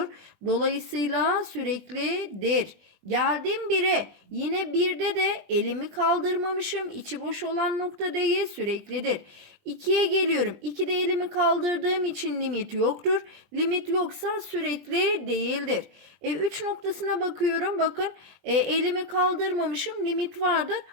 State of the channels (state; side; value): late; left; 20 ms